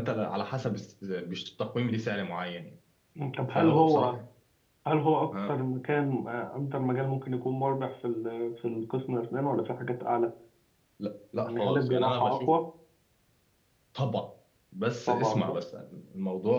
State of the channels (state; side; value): identical; both; correlation 1.00